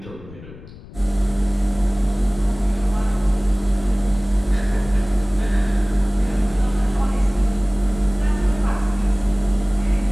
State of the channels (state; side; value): noise; left; rumble, 18 dB below the sound